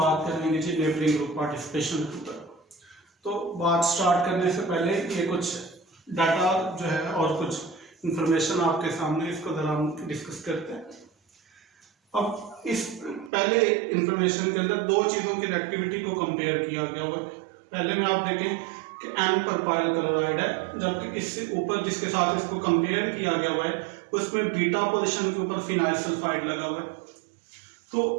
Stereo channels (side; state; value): left; drops out; at 13.3 s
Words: करेंगे जी नेबरिंग ग्रुप पार्टिसिपेशन के ऊपर। तो बात स्टार्ट करने से पहले ये कुछ डाटा जो है और कुछ इंफॉर्मेशन आपके सामने, इसको जरा हम डिस्कस करते हैं। अब इस पहले इंफॉर्मेशन के अंदर दो चीज़ों की रिएक्टिविटी को कंपेयर किया गया हुआ है। पहले में आप देखें कि N प्रोपाइल क्लोराइड है, जबकि इससे ऊपर जिसके साथ इसको कंपेयर किया गया हुआ है उसमें बीटा पोजीशन के ऊपर फिनाइल सल्फाइड लगा हुआ है। तो